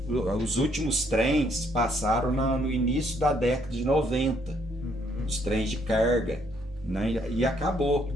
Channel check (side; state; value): both; normal; correlation 0.69